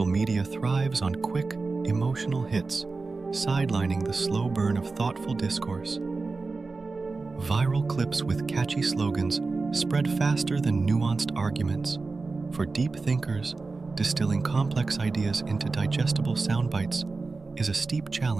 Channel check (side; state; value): left; quieter; 3.9 dB